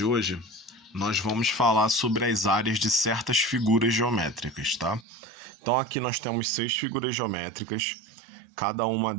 hoje, nós vamos falar sobre as áreas de certas figuras geométricas, tá? Então aqui nós temos 6 figuras geométricas, cada uma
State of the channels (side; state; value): left; drops out; at 5.1 s